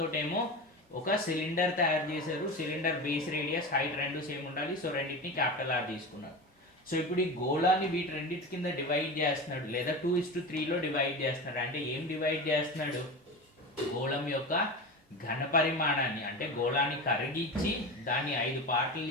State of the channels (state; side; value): normal; both; correlation 0.26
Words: ఏమో ఒక సిలిండర్ తయారు చేశారు. సిలిండర్ బేస్ రేడియస్ హైట్ రెండు సేమ్ ఉండాలి. సో రెండింటిని క్యాపిటల్ ఆర్ తీసుకున్నారు. సో ఇప్పుడు ఈ గోళాన్ని వీటి రెండింటి కింద డివైడ్ చేస్తున్నాడు, లేదా 2:3లో డివైడ్ చేస్తున్నాడు. అంటే ఏం డివైడ్ చేస్తున్నాడు? గోళం యొక్క ఘన పరిమాణాన్ని, అంటే గోళాన్ని కరిగించి దాన్ని 5 పార్ట్లు